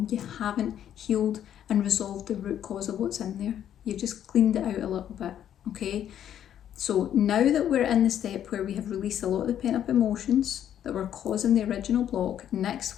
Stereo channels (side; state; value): right; quieter; 10.3 dB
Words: You haven't healed and resolved the root cause of what's in there. You've just cleaned it out a little bit, okay? So now that we're in the step where we have released a lot of the pent up emotions that were causing the original block,